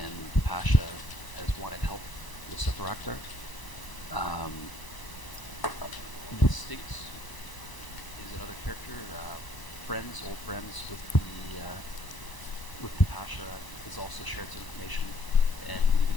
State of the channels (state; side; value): late; right; 1.0 ms